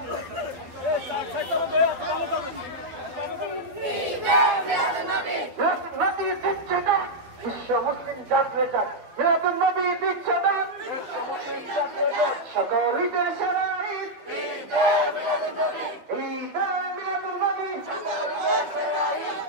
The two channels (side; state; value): left; late; 12 ms